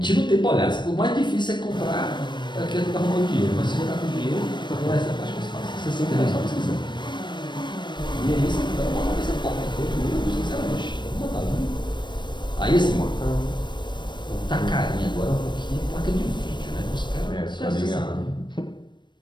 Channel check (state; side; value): late; right; 0.22 ms